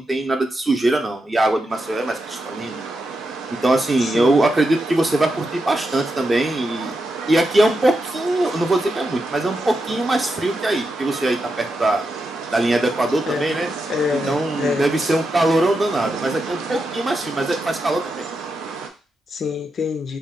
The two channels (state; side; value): normal; both; correlation 0.86